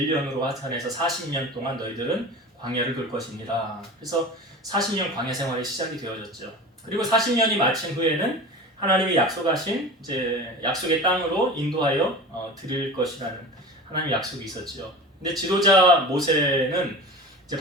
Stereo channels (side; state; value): both; normal; correlation 0.34